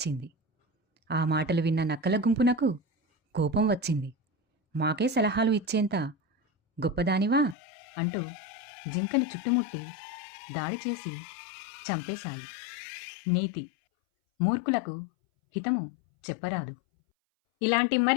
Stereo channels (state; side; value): drops out; right; at 7.6 s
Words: ఆ మాటలు విన్న నక్కల గుంపునకు కోపం వచ్చింది. మాకే సలహాలు ఇచ్చేంత గొప్పదానివా అంటూ జింకను చుట్టుముట్టి దాడి చేసి చంపేశాయి. నీతి: మూర్ఖులకు హితము చెప్పరాదు. ఇలాంటి